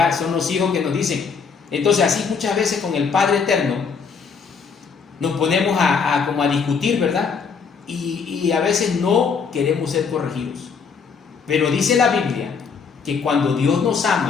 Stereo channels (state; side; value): quieter; right; 5.7 dB